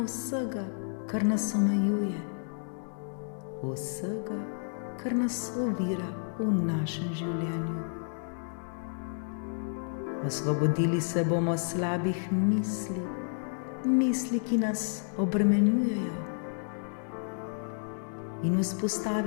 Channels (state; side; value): silent; right; digital silence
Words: vsega, kar nas omejuje, vsega, kar nas ovira v našem življenju. Osvobodili se bomo slabih misli, misli, ki nas obremenjujejo, in